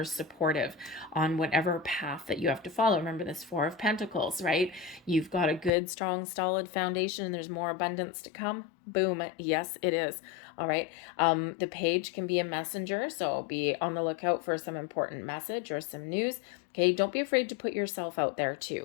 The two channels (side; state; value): right; drops out; at 5.7 s